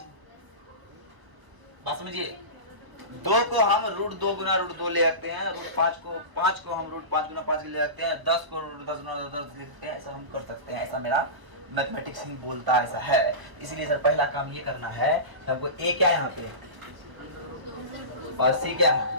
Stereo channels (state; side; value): late; left; 1.2 ms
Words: बात समझिए, 2 को हम √2 गुना √2 ले सकते हैं, √5 को 5 को हम √5 गुना 5 ले सकते हैं, 10 को √10 गुना 10 ले सकते हैं। ऐसा हम कर सकते हैं, ऐसा मेरा मैथमेटिक्स ही बोलता है, ऐसा है। इसलिए सर पहला काम ये करना है, हमको ए क्या है यहाँ पे और सी क्या